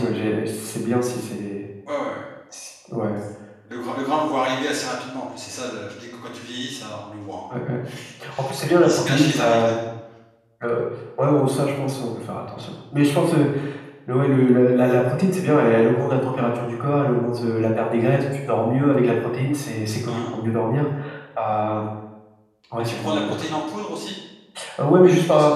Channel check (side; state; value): both; identical; correlation 1.00